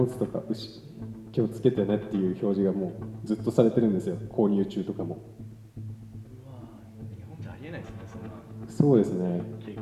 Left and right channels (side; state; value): both; identical; correlation 1.00